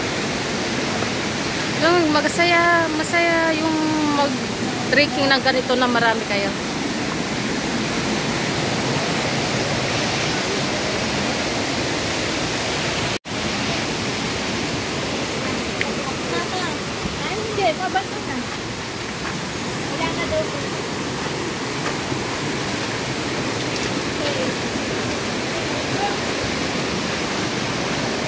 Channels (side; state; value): both; identical; correlation 1.00